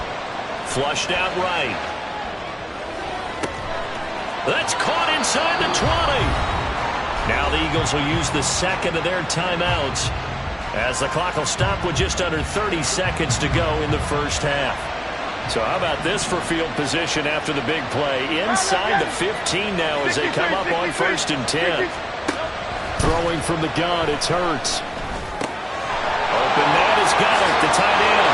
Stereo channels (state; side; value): identical; both; correlation 1.00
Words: Flushed out right. That's caught inside the 20. Now the Eagles will use the 2nd of their timeouts as the clock will stop with just under 30 seconds to go in the first half. So how about this for field position after the big play? Inside the 15 now as they come up on 1st and 10. Throwing from the gun, it's Hurts. Open man has got it, the tight end.